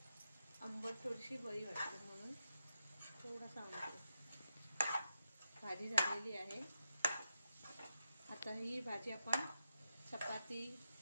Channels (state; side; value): inverted; both; correlation -0.87